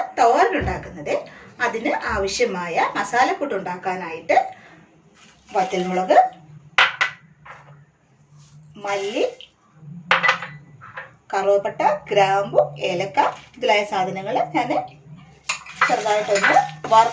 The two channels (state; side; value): identical; both; correlation 1.00